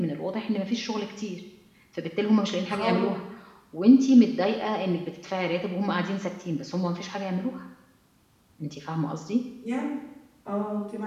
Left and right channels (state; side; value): identical; both; correlation 1.00